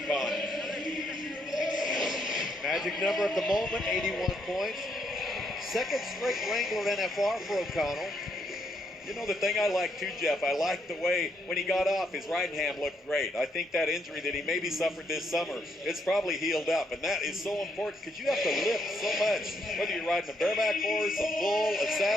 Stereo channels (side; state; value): both; normal; correlation 0.75